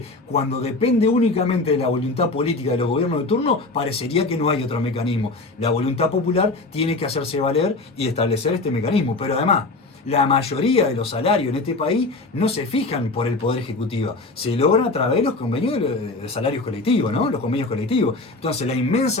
cuando depende únicamente de la voluntad política de los gobiernos de turno, parecería que no hay otro mecanismo. La voluntad popular tiene que hacerse valer y establecer este mecanismo. Pero además, la mayoría de los salarios en este país no se fijan por el Poder Ejecutivo, se logran a través de los convenios de salarios colectivos, ¿no? Los convenios colectivos. Entonces, la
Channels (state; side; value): quieter; right; 3.3 dB